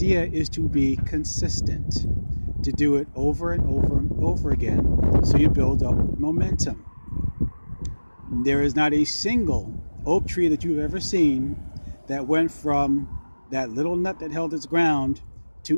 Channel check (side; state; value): both; inverted; correlation -1.00